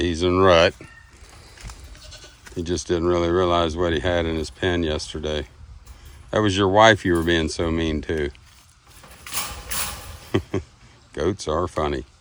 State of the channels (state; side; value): identical; both; correlation 1.00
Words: he's in rut. He just didn't really realize what he had in his pen yesterday. That was your wife you were being so mean to. Goats are funny.